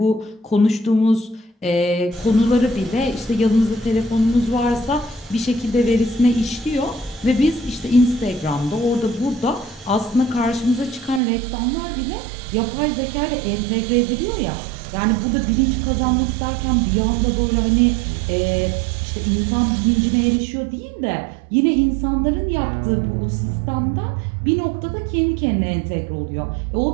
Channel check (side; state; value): left; drops out; at 11.2 s